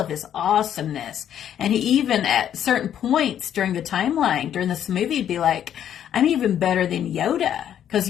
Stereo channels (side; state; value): right; quieter; 10.0 dB